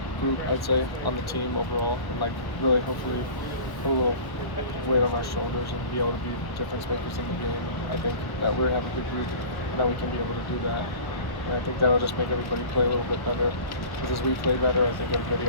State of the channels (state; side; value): late; right; 1.1 ms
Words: group, I'd say, on the team overall, and like really hopefully put a little weight on our shoulders and be able to be difference makers in the game. And I think that we have a good group and that we can be able to do that. And I think that'll just make everybody play a little bit better. Because as we play better, I think everybody